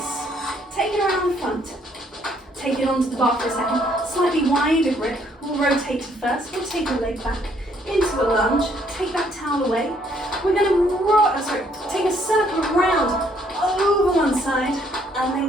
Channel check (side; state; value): both; normal; correlation 0.67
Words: Take it around the front. Take it onto the bar for a second. Slightly wider grip. We'll rotate to first. We'll take the leg back into a lunge. Take that towel away. We're going to take a circle around over one side and